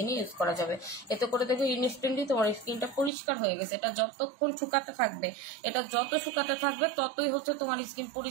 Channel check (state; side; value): drops out; left; at 3.1 s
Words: ইউজ করা যাবে। এতে করে দেখবে ইনস্ট্যান্টলি তোমার স্কিনটা পরিষ্কার হয়ে গেছে। এটা যতক্ষণ শুকাতে থাকবে, এটা যত শুকাতে থাকবে ততই হচ্ছে তোমার স্কিন